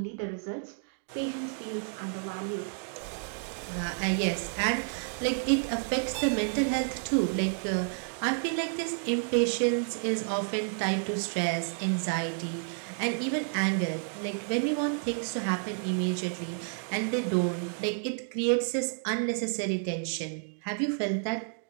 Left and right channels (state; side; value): silent; left; 57 dB below the other